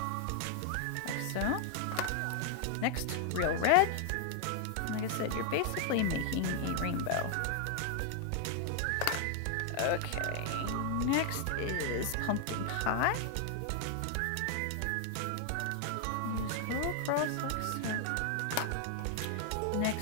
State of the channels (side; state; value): both; different; correlation 0.00